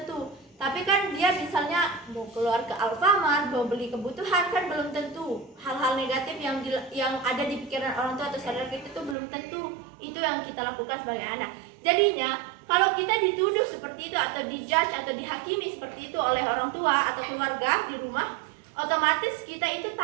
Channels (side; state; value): left; drops out; at 9.2 s